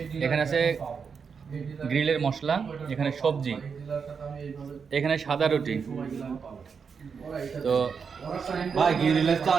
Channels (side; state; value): left; quieter; 6.0 dB